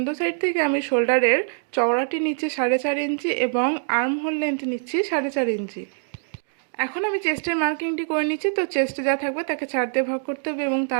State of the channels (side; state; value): left; silent; digital silence